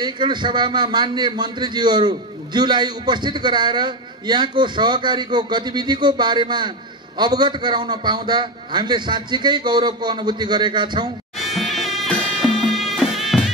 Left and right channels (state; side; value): normal; both; correlation 0.13